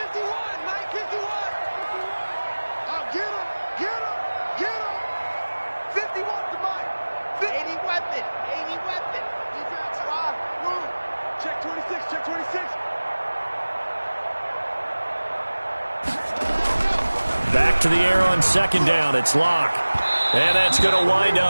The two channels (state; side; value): inverted; both; correlation -1.00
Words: Back to the air on second down. It's Locke. And that's going to wind